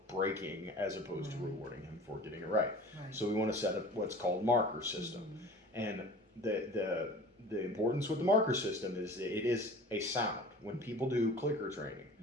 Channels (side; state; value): both; normal; correlation 0.42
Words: breaking as opposed to rewarding him for getting it right. So we want to set up what's called marker system. And the importance with the marker system is that it is a sound. When people do clicker training,